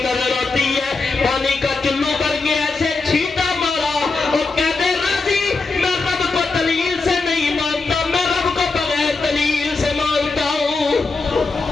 نظر آتی ہے پانی کا چلو کر کے ایسے چھینٹا مارا اور کہتے راضی میں رب کو دلیل سے نہیں مانتا میں رب کو بغیر دلیل سے مانتا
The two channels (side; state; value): right; quieter; 4.0 dB